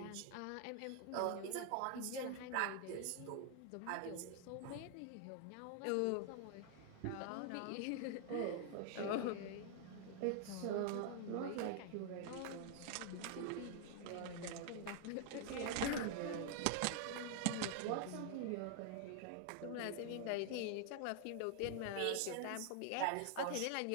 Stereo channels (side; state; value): both; different; correlation 0.00